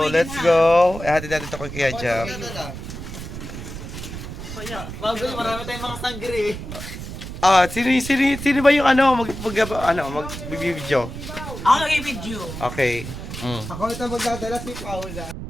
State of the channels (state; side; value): noise; right; rumble, 9 dB below the sound